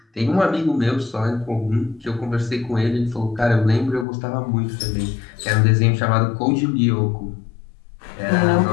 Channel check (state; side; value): drops out; right; at 4.0 s